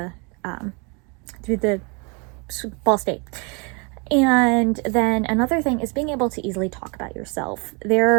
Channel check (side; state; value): left; quieter; 32.0 dB